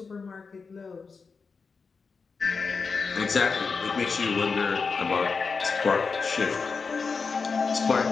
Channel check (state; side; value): quieter; right; 4.9 dB